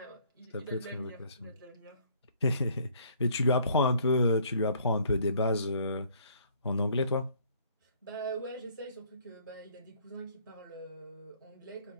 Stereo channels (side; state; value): both; inverted; correlation -0.60